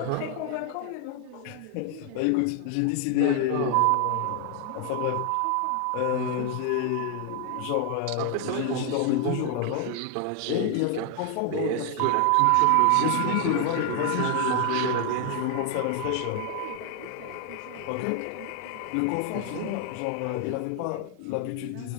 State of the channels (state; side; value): different; both; correlation 0.00